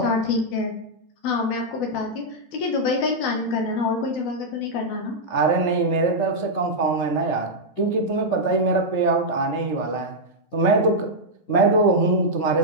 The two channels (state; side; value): late; right; 12 ms